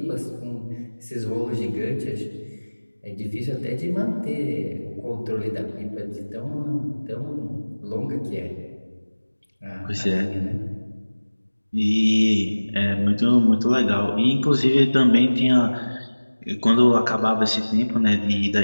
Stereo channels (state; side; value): inverted; both; correlation -1.00